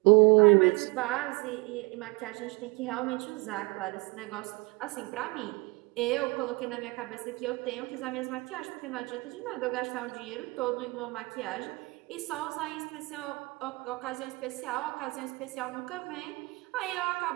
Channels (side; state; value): left; quieter; 26.3 dB